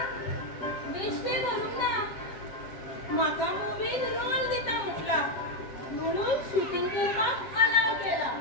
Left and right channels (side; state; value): right; late; 7.6 ms